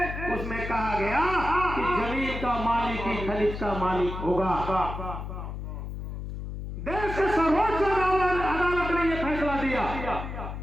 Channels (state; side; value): noise; left; hum, 7 dB below the sound